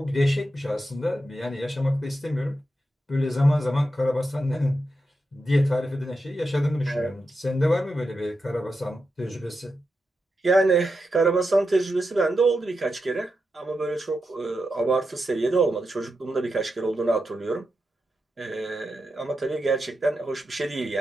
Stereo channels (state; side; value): normal; both; correlation 0.87